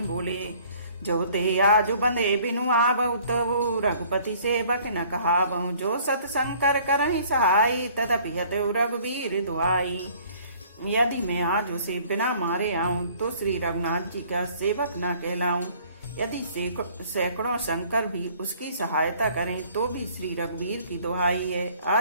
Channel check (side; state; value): both; inverted; correlation -0.55